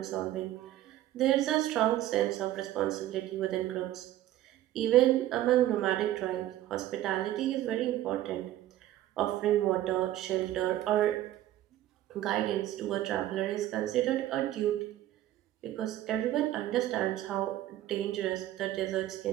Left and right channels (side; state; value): left; quieter; 13.8 dB